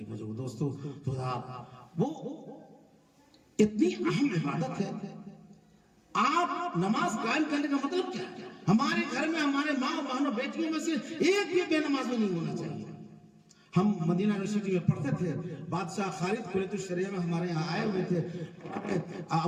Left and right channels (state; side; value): identical; both; correlation 1.00